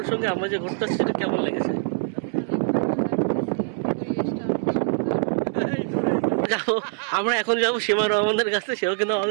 সঙ্গে আমরা যে ঘুরতে আসছি, সেটা কেমন লেগেছে? যাবো, আমরা এখন যাবো সীমা রহমানের কাছে, সেও কিন্তু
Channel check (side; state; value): left; silent; 63 dB below the other